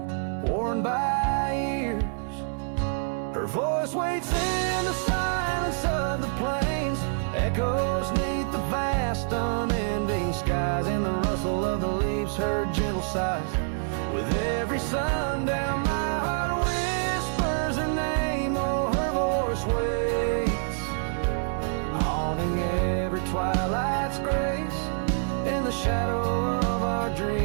worn by years. Her voice waits in the silence of the plains, echoes neath the vast unending skies. In the rustle of the leaves, her gentle sighs. With every sundown, my heart whispers her name. Oh, her voice waits, haunting every twilight's grace. In the shadow of our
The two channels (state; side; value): silent; left; 60 dB below the other